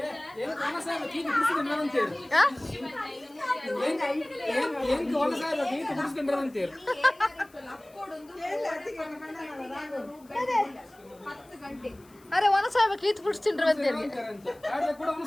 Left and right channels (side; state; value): left; noise; hiss, 28 dB below the sound